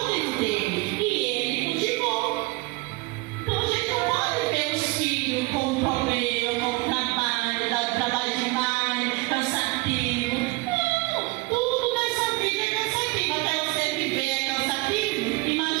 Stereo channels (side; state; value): left; quieter; 23.6 dB